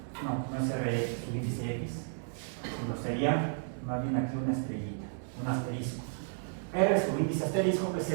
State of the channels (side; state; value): left; silent; 56 dB below the other